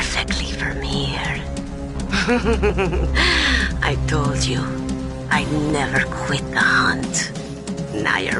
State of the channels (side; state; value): both; identical; correlation 1.00